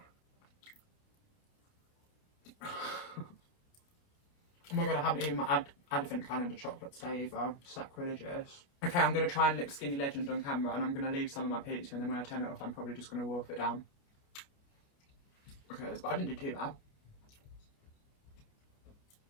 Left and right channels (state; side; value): late; right; 29 ms